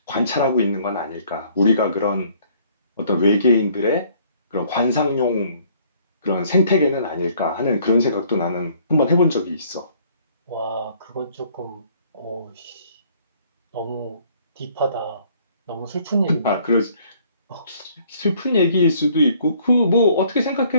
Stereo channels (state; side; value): inverted; both; correlation -0.61